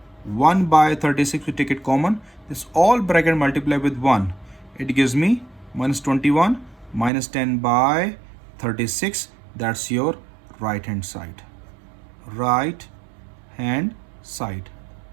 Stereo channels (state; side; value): drops out; left; at 7.1 s